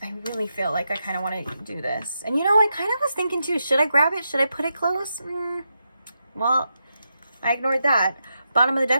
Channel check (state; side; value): inverted; both; correlation -0.86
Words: like I kind of want to do this. And you know, I kind of was thinking too, should I grab it? Should I put it close? Well, I ignored that. Bottom of the